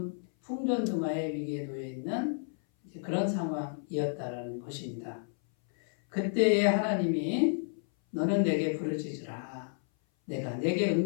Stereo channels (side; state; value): right; silent; 57 dB below the other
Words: 풍전등화의 위기에 놓여 있는 그런 상황이었다라는 것입니다. 그때에 하나님이 너는 내게 부르짖으라. 내가 내게